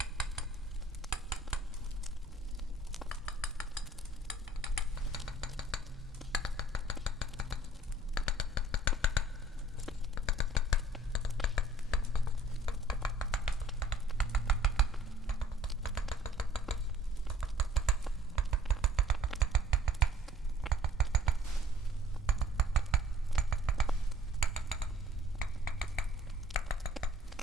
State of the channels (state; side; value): normal; both; correlation 0.56